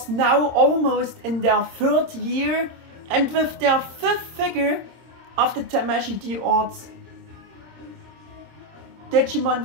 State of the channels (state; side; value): late; left; 26 ms